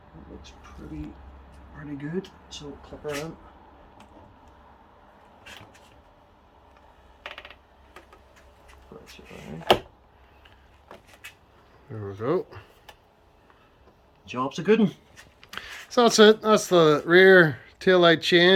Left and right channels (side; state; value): both; identical; correlation 1.00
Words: That looks pretty good. So clip her in. Press it down. There we go. Job's a good one. So that's it. That's the rear tail light